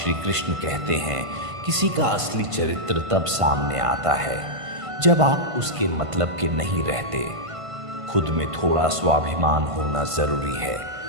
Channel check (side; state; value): left; late; 1.5 ms